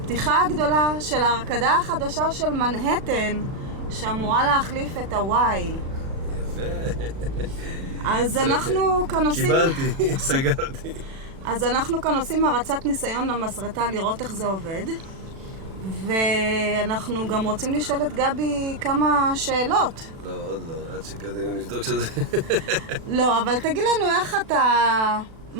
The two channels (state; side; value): late; left; 36 ms